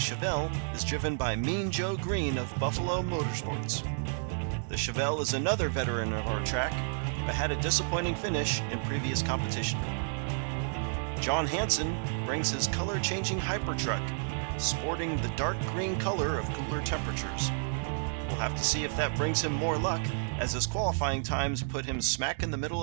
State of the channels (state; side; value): silent; left; digital silence